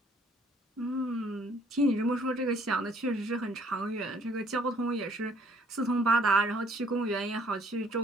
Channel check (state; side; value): normal; both; correlation 0.61